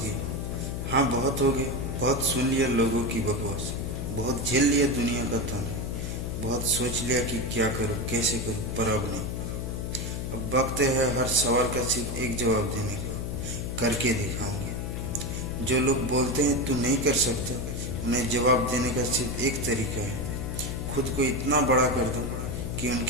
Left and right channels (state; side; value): noise; left; hum, 4 dB below the sound